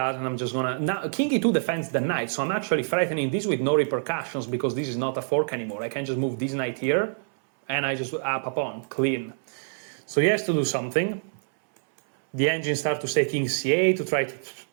I'm just gonna... Now, king e2 defends the knight, so I'm actually threatening this with no repercussions, because this is not a fork anymore. I can just move this knight here, and I just up a pawn, clean. So he has to do something. The engine starts to say king c8 to try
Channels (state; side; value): silent; left; 61 dB below the other